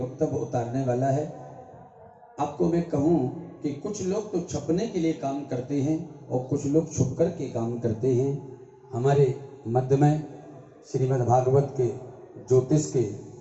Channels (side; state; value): both; identical; correlation 1.00